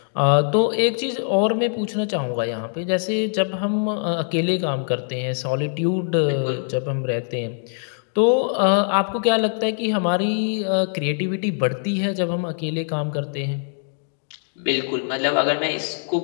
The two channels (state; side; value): silent; right; digital silence